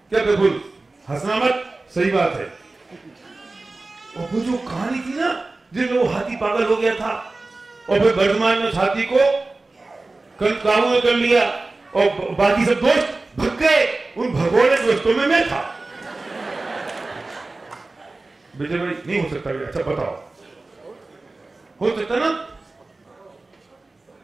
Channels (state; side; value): quieter; left; 3.3 dB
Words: क्या बिल्कुल हंसना मत, सही बात है। और वो जो कहानी थी ना जिसमें वो हाथी पागल हो गया था और फिर वर्धमान ने उस हाथी को काबू में कर लिया और बाकी सब दोस्त भग गए, उन भगोड़े दोस्तों में मैं था। विजय भाई नहीं हो सकता? अच्छा बताओ, हो सकता ना?